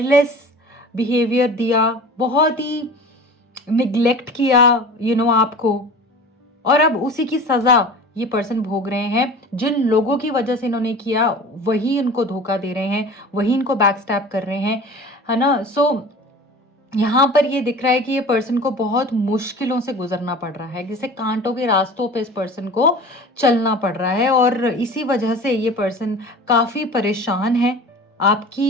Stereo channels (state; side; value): normal; both; correlation 0.38